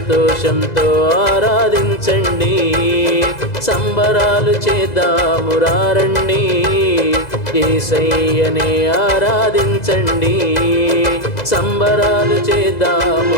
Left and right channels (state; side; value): late; right; 2.0 ms